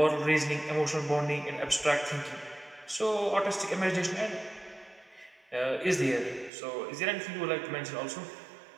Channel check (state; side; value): drops out; left; at 6.5 s